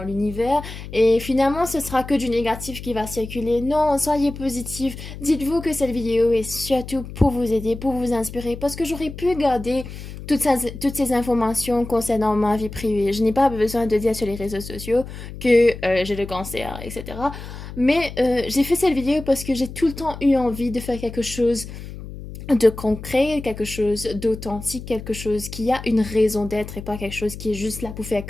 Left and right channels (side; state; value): left; noise; hum, 11 dB below the sound